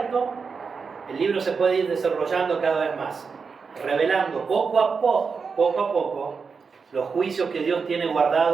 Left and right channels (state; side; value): quieter; left; 5.3 dB